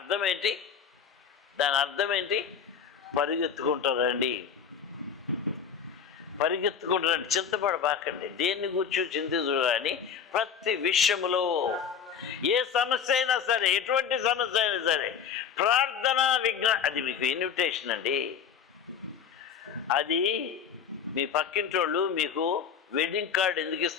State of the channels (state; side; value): quieter; right; 7.2 dB